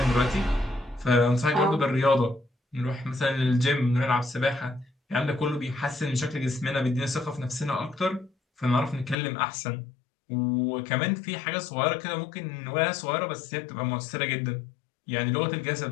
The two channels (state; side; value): drops out; right; at 9.2 s